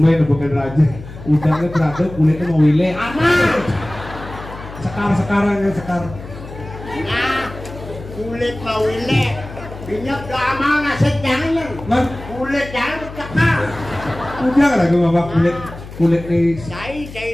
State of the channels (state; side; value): noise; left; hum, 14 dB below the sound